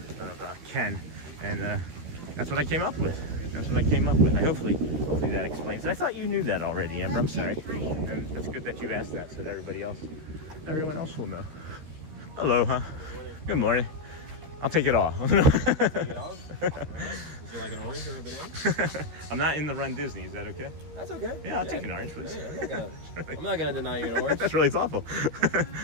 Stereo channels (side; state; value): left; late; 13 ms